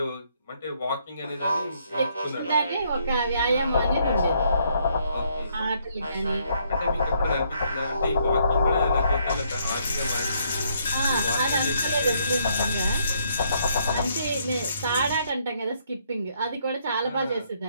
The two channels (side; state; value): both; inverted; correlation -0.71